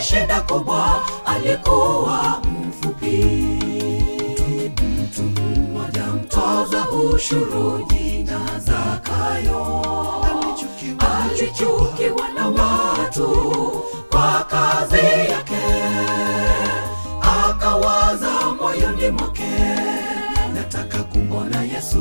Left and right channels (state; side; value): inverted; both; correlation -1.00